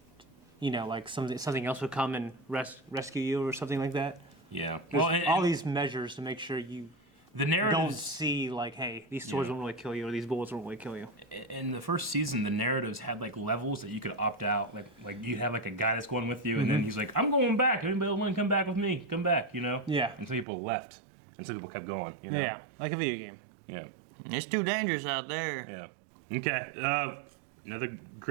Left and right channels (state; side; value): drops out; left; at 20.5 s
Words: You know, like something else would come and rescue you or something like that. Yeah. There's Well, all these measures to make sure you the narrative don't see, like, hey, these swords won't really kill you or these bullets won't really kill you. in the first season, the narratives had like levels that you could opt out. Like you have like a guy that's going with you, and then he's like, "I'm going back. Anybody want to come back with me? Come back." You know? Yeah. And some people left, and some people kept going. You know? Yeah, like a video game. Yeah. It's too dangerous out there. Yeah. Okay. Another